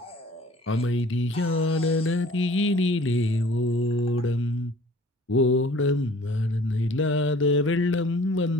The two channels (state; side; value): normal; both; correlation 0.51